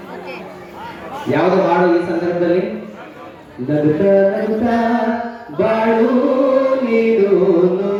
ಯಾವುದು ಹಾಡು ಈ ಸಂದರ್ಭದಲ್ಲಿ? ನಗುತ್ತಾ ನಗುತ್ತಾ ಬಾಳು ನೀನು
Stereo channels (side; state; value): both; identical; correlation 1.00